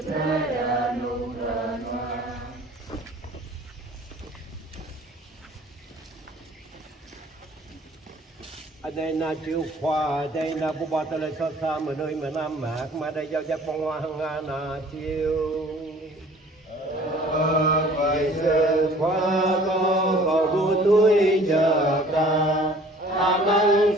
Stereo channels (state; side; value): normal; both; correlation 0.51